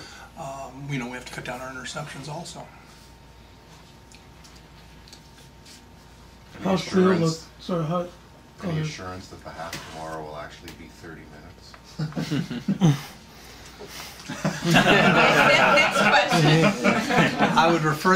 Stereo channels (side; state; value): both; identical; correlation 1.00